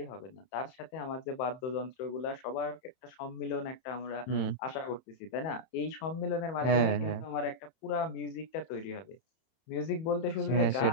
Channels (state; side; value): late; right; 31 ms